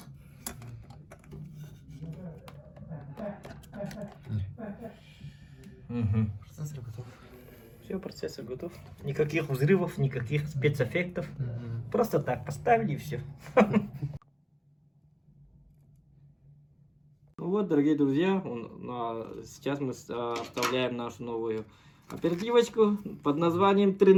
Процессор готов. Все, процессор готов. Никаких взрывов, никаких спецэффектов. Просто так поставили и все. Вот, дорогие друзья, сейчас мы вставляем нашу новую оперативочку под названием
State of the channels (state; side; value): identical; both; correlation 1.00